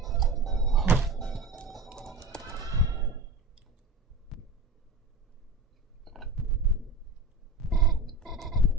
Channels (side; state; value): left; quieter; 3.1 dB